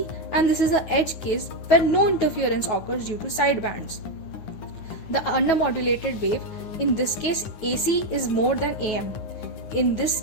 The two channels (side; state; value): right; late; 9.3 ms